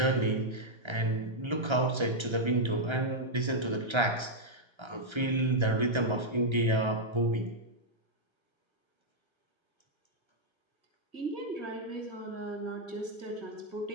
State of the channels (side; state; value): left; late; 1.3 ms